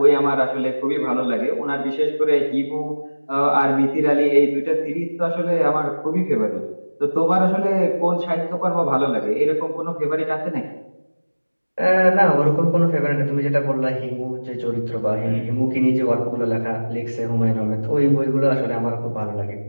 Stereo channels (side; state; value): both; inverted; correlation -1.00